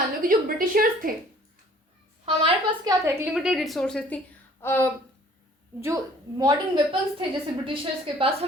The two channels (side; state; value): both; normal; correlation 0.54